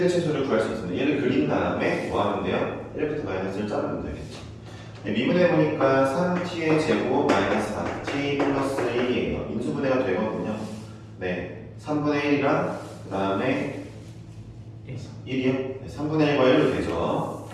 최소를 구할 수 있습니다. 얘를 그린 다음에 뭐 하면 돼요? 1부터 마이너스 1 자르면 되겠죠. 네, 미분해보니까 3t의 제곱 마이너스 4t 플러스 1이에요. 인수분해가 되거든요. 네, 3분의 1이랑 그 다음에 1이요? 네, 3분의 1과 1로 되죠.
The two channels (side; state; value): both; identical; correlation 1.00